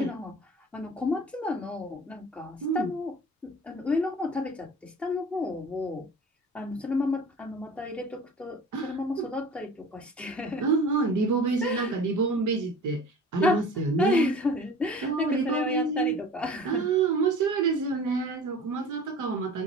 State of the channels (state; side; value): normal; both; correlation 0.41